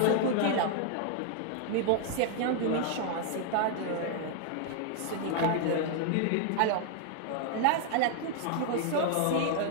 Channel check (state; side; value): different; both; correlation 0.00